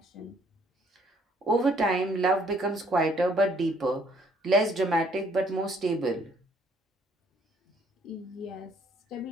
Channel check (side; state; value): both; normal; correlation 0.64